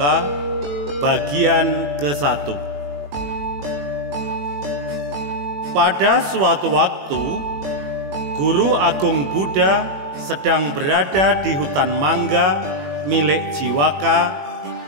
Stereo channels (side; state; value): left; late; 21 ms